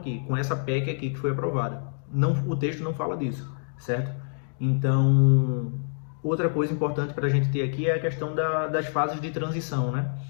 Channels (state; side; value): silent; right; digital silence